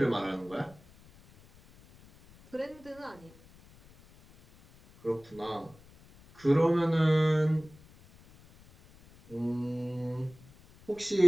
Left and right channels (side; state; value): left; noise; rumble, 25 dB below the sound